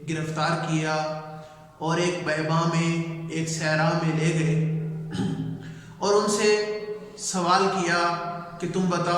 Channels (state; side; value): identical; both; correlation 1.00